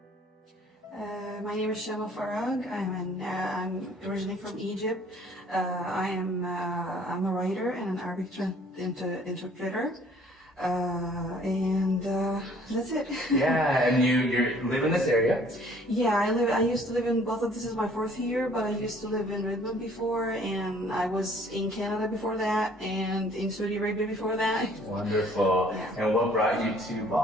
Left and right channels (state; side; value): normal; both; correlation 0.57